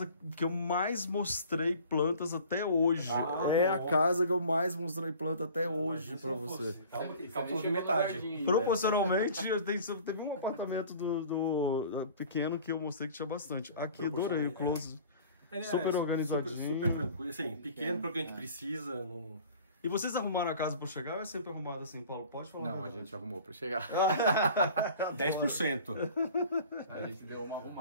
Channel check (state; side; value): inverted; both; correlation -0.46